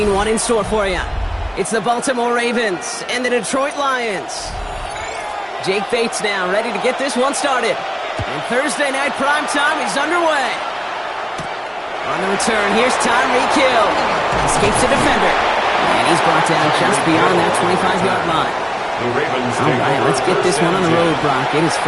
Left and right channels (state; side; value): identical; both; correlation 1.00